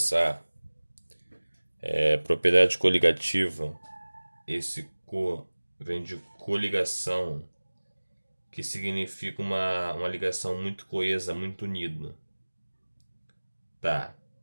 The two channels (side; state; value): both; inverted; correlation -1.00